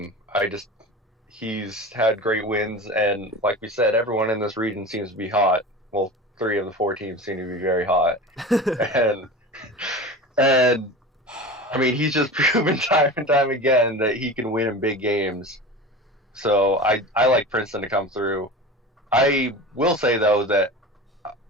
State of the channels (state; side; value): normal; both; correlation 0.32